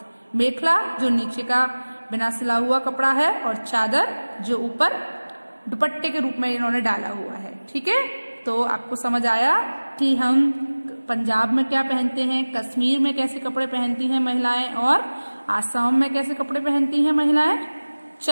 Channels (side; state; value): both; inverted; correlation -1.00